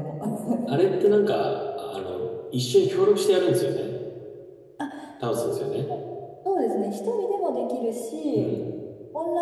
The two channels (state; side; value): identical; both; correlation 1.00